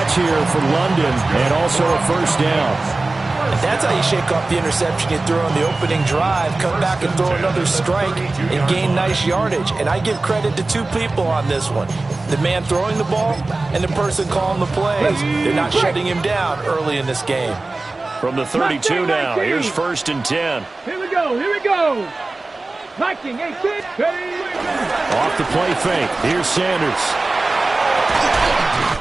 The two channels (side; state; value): left; quieter; 3.2 dB